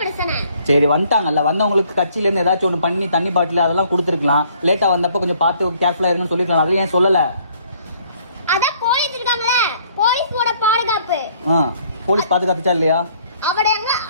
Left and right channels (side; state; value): both; inverted; correlation -0.62